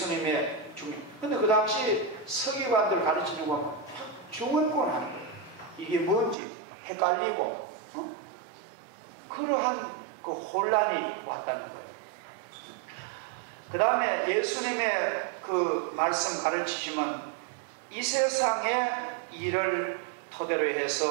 중요. 근데 그 당시 서기관들 가르치는 거 보면 중언부언 하는 거예요. 이게 뭔지 헷갈리고 그러한 그 혼란이 왔다는 거예요. 그 다음에 예수님의 그 말씀 가르치시면 이 세상의 일을 토대로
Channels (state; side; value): drops out; left; at 6.4 s